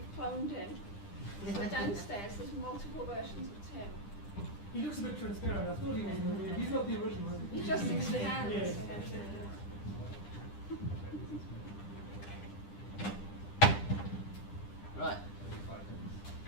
cloned him. So downstairs there's multiple versions of Tim. He looks a bit transparent. I thought he was the real. He's not the original. He just expands. Yes. Right.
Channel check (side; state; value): right; late; 10 ms